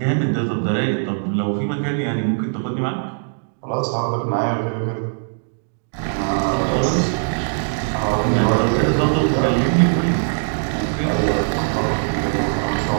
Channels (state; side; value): silent; left; digital silence